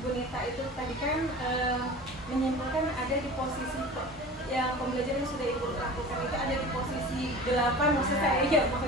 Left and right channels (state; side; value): normal; both; correlation 0.37